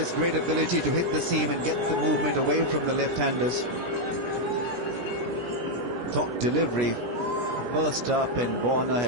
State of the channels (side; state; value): left; late; 17 ms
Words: great ability to hit the seam and get the movement away from the left-handers. Top delivery, first up, and Warner